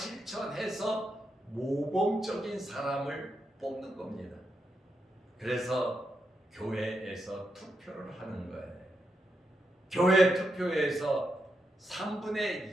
모범적인 사람을 뽑는 겁니다. 그래서 교회에서 투표를 하는 거예요. 교회 투표에서 3분의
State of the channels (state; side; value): normal; both; correlation 0.84